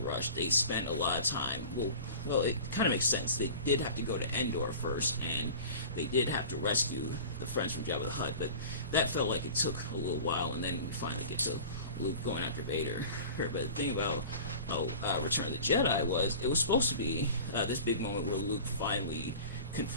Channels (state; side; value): inverted; both; correlation -0.38